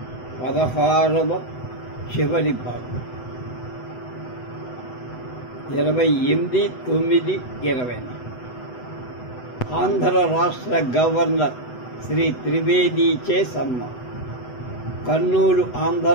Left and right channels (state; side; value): late; right; 8.0 ms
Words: 16వ చివరి భాగం 28/9/20. ఆంధ్ర రాష్ట్ర గవర్నర్ శ్రీ త్రివేదీచే సన్మానం. కర్నూలు ఆంధ్ర